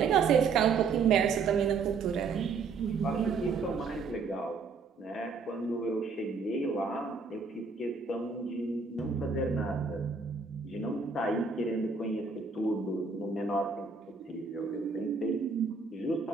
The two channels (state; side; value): quieter; left; 4.9 dB